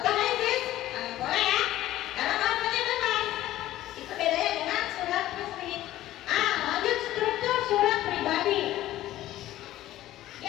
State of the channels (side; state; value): right; quieter; 14.5 dB